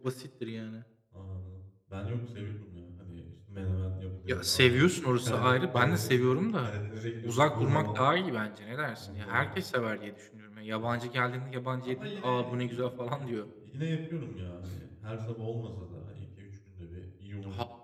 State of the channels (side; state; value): both; identical; correlation 1.00